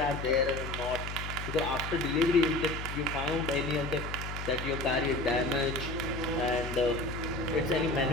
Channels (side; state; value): left; noise; hum, 7 dB below the sound